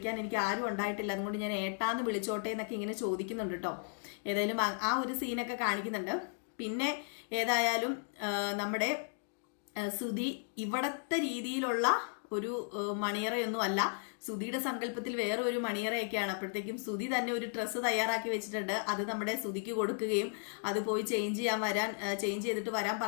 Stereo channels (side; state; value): right; silent; 54 dB below the other